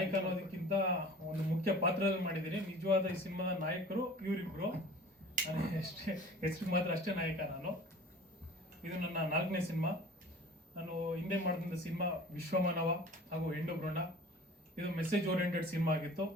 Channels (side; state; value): both; normal; correlation 0.44